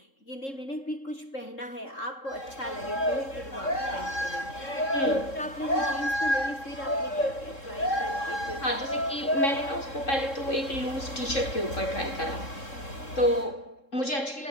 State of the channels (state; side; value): late; right; 3.7 ms